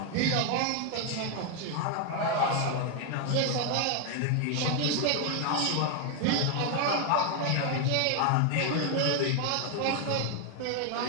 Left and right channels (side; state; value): both; different; correlation 0.01